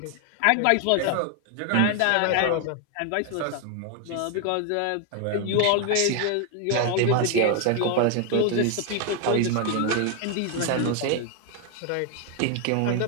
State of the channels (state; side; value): different; both; correlation 0.01